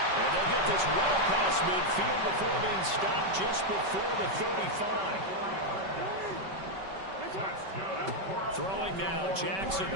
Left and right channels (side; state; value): left; late; 5.2 ms